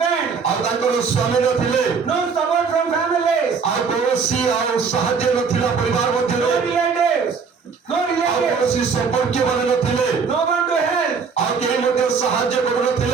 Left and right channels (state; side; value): quieter; left; 5.6 dB